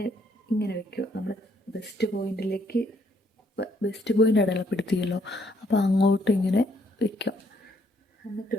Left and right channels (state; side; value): normal; both; correlation 0.70